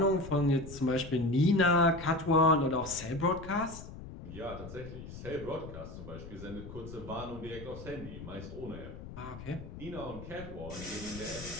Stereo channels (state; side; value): noise; left; rumble, 12 dB below the sound